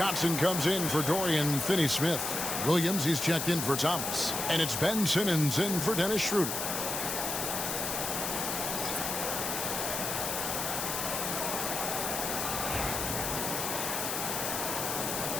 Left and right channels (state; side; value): noise; left; hiss, 2 dB below the sound